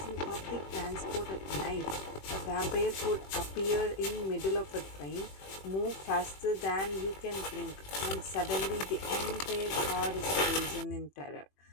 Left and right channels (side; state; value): right; late; 21 ms